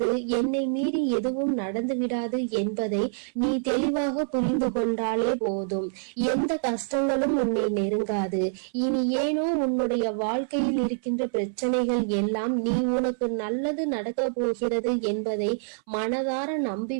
என்னை மீறி எதுவும் நடந்து விடாது என்பதை நீ தெளிவாக புரிந்து கொண்டாலே போதும். எந்த கஷ்டங்களும் உன்னை நெருங்காது. இனி ஏனோ உன்னுடைய வாழ்க்கையில் இருக்கின்ற பிரச்சனைகள் எல்லாம் நீ உனக்கு நல்லது நடக்க போகிறது என்பதை மனதார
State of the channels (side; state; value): left; silent; 61 dB below the other